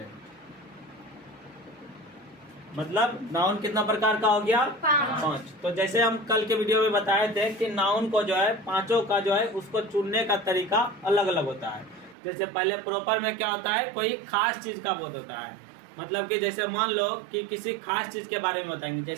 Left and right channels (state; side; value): drops out; left; at 12.2 s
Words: मतलब नाउन कितना प्रकार का हो गया? 5। तो जैसे हम कल के वीडियो में बताए थे कि नाउन को जो है पांचों का जो है उसको चुनने का तरीका अलग अलग होता है। जैसे पहले प्रॉपर में क्या होता है? कोई खास चीज का बोध होता है। मतलब कि जैसे मान लो कि किसी खास चीज के बारे में बताएंगे।